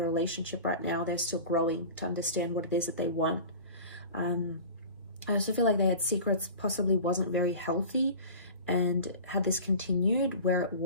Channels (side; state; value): both; inverted; correlation -0.37